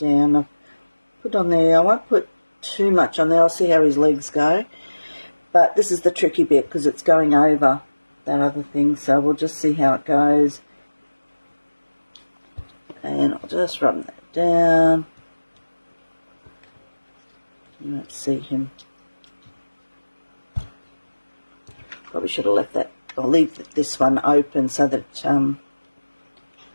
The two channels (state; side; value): inverted; both; correlation -1.00